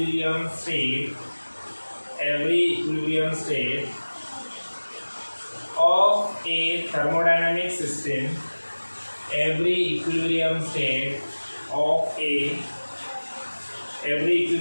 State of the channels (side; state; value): both; inverted; correlation -1.00